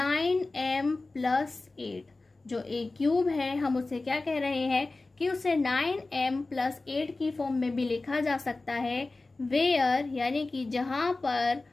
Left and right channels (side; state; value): right; quieter; 3.3 dB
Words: plus 8। जो a क्यूब है हम उसे क्या कह रहे हैं कि उसे 9m प्लस 8 की फॉर्म में भी लिखा जा सकता है। वेयर यानी कि जहां पर